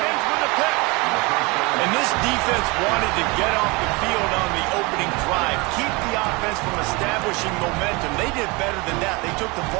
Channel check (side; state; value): left; quieter; 26.1 dB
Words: with a pick. And this defense wanted to get off the field on the opening drive, keep the offense from establishing momentum. They did better than that. They took the